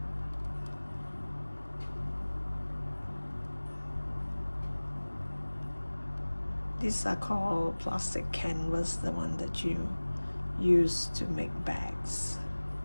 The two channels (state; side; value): inverted; both; correlation -1.00